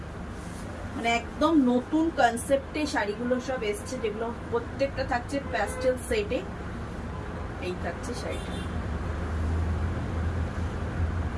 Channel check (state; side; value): identical; both; correlation 1.00